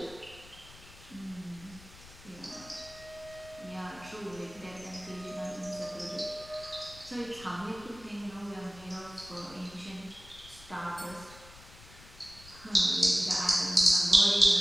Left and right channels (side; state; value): left; noise; rumble, 20 dB below the sound